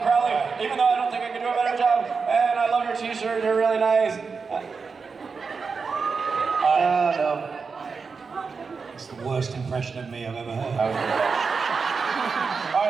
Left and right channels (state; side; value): quieter; left; 5.0 dB